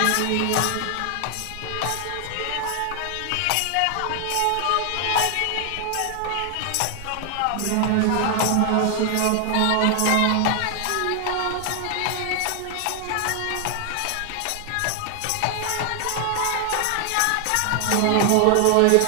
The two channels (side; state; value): both; different; correlation 0.00